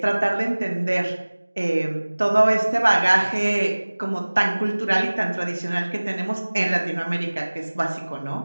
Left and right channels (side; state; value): both; inverted; correlation -1.00